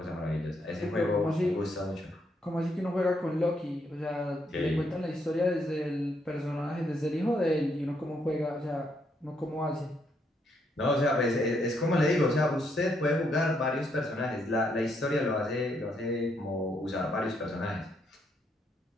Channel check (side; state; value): both; normal; correlation 0.75